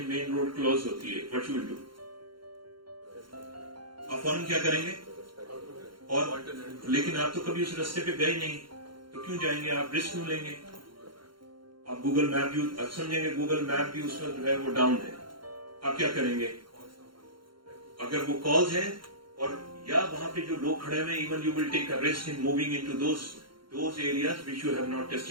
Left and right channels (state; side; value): late; left; 0.73 ms